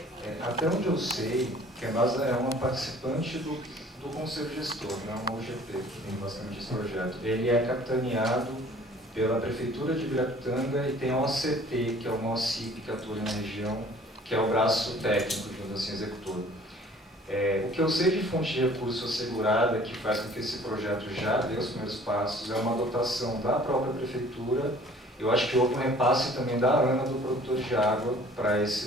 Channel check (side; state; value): both; normal; correlation 0.52